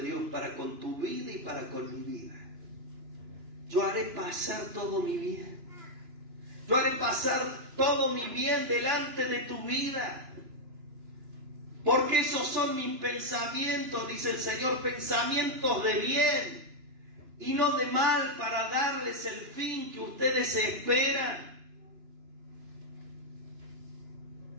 Dios para con tu vida y para con mi vida. Yo haré pasar todo mi bien. Yo haré pasar todo mi bien delante de tu vida. Porque esos son mis pensamientos, dice el Señor, pensamientos de bien y no de mal, para darles el fin que ustedes esperan.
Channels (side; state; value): left; late; 2.9 ms